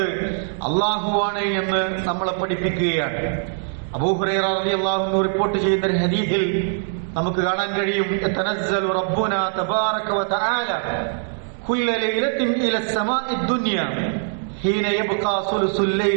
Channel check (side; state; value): left; silent; digital silence